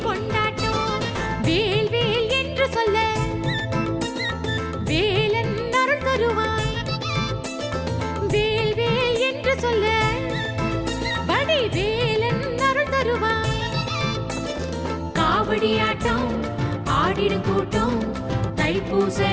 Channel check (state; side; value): identical; both; correlation 1.00